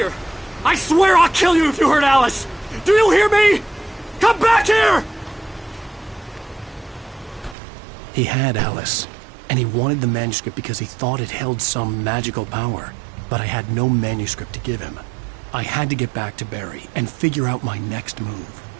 I swear I'll kill you if you hurt Alice! Do you hear me? Come back here! He had Alice, and he wanted the manuscript because he thought it held some magical power. But I had no manuscript to give him. I had to get back to Barry and figure out my next move.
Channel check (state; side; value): drops out; left; at 7.6 s